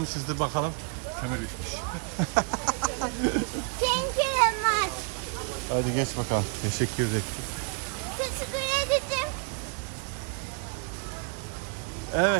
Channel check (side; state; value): left; quieter; 38.2 dB